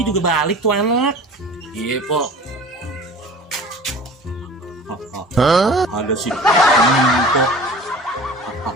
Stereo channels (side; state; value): both; normal; correlation 0.41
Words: juga balik tuh anak. Iya Pok. Ada si Empok